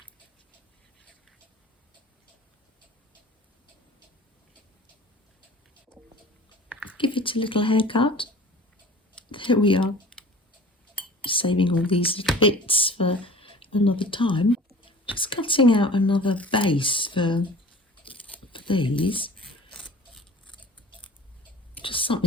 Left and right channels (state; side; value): normal; both; correlation 0.43